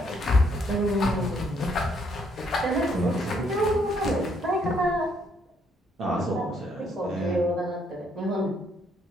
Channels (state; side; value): normal; both; correlation 0.70